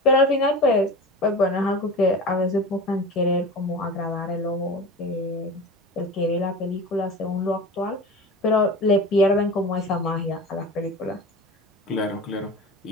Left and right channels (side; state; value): both; normal; correlation 0.32